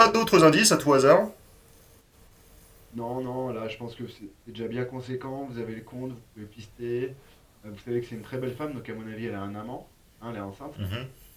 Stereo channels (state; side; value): identical; both; correlation 1.00